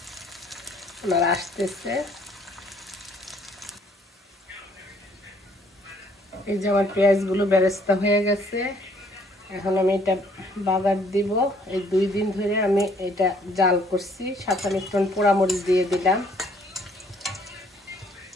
ওনারা আসতেছে। এই যে আমার পেঁয়াজগুলো বেরেস্তা হয়ে গেছে। এখন আমি এটা বাগার দিব। এই 2 দিন ধরে আমি এটা জাল করছি। সাথে আমি একটু পোড়ামরিচ দিয়ে দিলাম।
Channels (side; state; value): both; normal; correlation 0.63